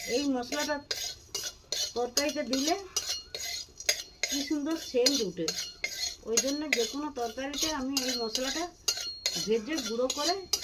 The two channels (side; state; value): both; identical; correlation 1.00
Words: এই মশলাটা তরকারিতে দিলে কি সুন্দর সেন্ট উঠে, ওই জন্য যে কোনো তরকারিতে আমি এই মশলাটা ভেজে গুঁড়ো করে